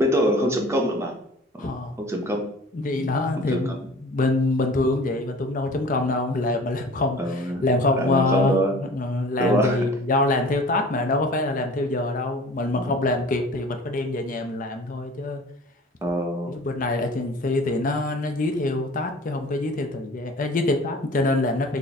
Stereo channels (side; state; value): both; normal; correlation 0.45